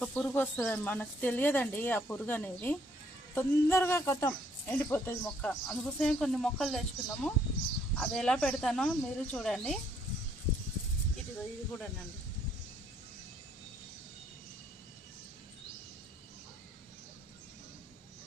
పురుగు వస్తుంది, మనకు తెలియదండి ఆ పురుగు అనేది. తొందరగా కొత్తం ఎండిపోతుంది మొక్క. అందుకోసమే కొన్ని మొక్కలు తెచ్చుకున్నాము. అది ఎలా పెడతానో మీరు చూడండి. ఇది కూడానండి.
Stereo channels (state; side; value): normal; both; correlation 0.67